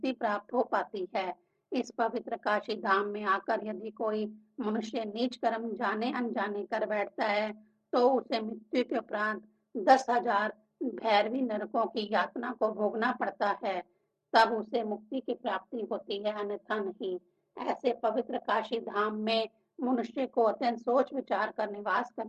प्राप्त हो पाती है। इस पवित्र काशी धाम में आकर यदि कोई मनुष्य नीच कर्म जाने अनजाने कर बैठता है तो उसे मृत्यु के उपरांत 10,000 भैरवी नरकों की यातना को भोगना पड़ता है, तब उसे मुक्ति की प्राप्ति होती है, अन्यथा नहीं। ऐसे पवित्र काशी धाम में मनुष्य को अत्यंत सोच विचार कर निवास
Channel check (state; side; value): identical; both; correlation 1.00